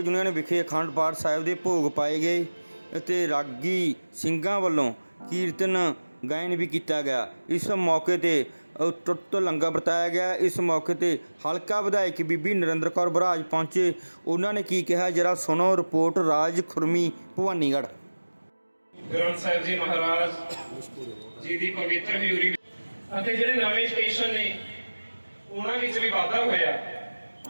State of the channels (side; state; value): both; inverted; correlation -1.00